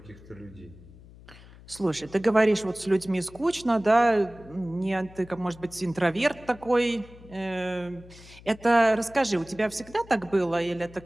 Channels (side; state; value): left; noise; hum, 21 dB below the sound